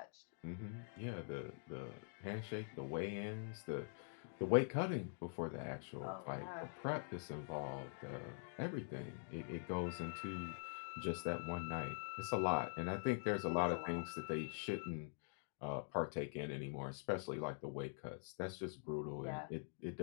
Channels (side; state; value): right; silent; digital silence